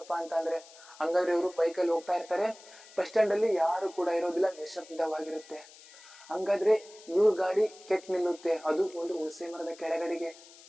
ಅಂತ ಅಂದ್ರೆ. ಹಂಗಾದ್ರೆ ಇವರು ಬೈಕಲ್ಲಿ ಹೋಗ್ತಾ ಇರ್ತಾರೆ. ಬಸ್ ಸ್ಟ್ಯಾಂಡ್ ಅಲ್ಲಿ ಯಾರು ಕೂಡ ಇರೋದಿಲ್ಲ, ನಿಶಬ್ದವಾಗಿರುತ್ತೆ. ಹಂಗಾದ್ರೆ ಇವ್ರ ಗಾಡಿ ಕೆಟ್ಟ ನಿಲ್ಲುತ್ತೆ. ಅದು ಒಂದು ಹುಣಸೆ ಮರದ ಕೆಳಗಡೆಗೆ.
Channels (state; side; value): noise; left; hiss, 21 dB below the sound